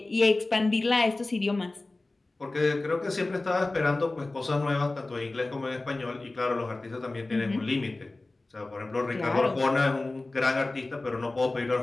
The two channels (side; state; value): right; quieter; 3.0 dB